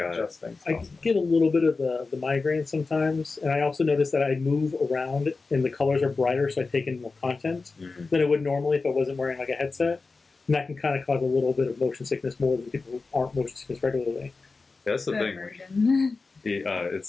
adjust things. I get a little bit of the migraine sometimes, and I also notice that I move around and the colors are brighter, so I take in more content than I would normally if I wasn't wearing like a headset. And that can kind of cause a little bit of motion sickness more than people who aren't motion sickness regularly. Yeah, that's the thing.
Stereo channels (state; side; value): quieter; right; 4.0 dB